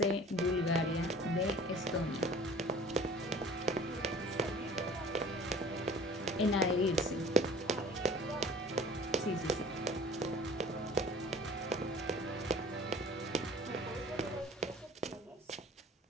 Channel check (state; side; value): normal; both; correlation 0.47